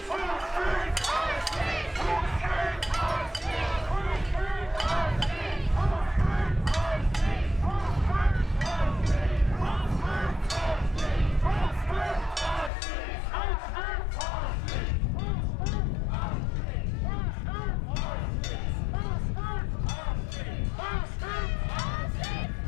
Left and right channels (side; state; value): right; drops out; at 12.7 s